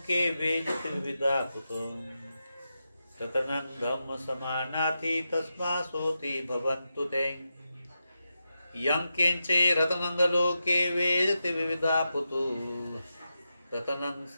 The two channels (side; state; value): both; inverted; correlation -0.88